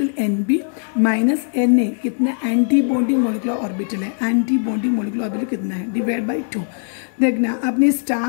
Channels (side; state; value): right; silent; digital silence